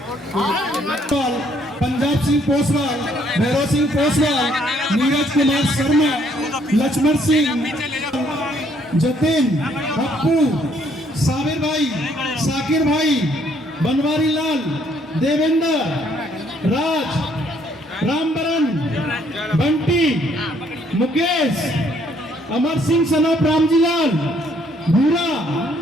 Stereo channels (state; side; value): normal; both; correlation 0.67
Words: पंजाब सिंह पोसवाल, भैरव सिंह पोसवाल, नीरज कुमार शर्मा, लक्ष्मण सिंह, जतिन, पप्पू, साबिर भाई, साकिर भाई, बनवारी लाल, देवेंद्र, राज, रामबरन, बंटी, मुकेश, अमर सिंह सनोप रामजीलाल, भूरा